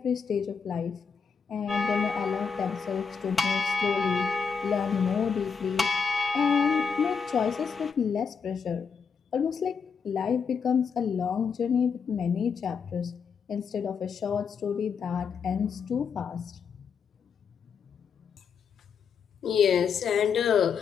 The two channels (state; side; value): quieter; right; 6.2 dB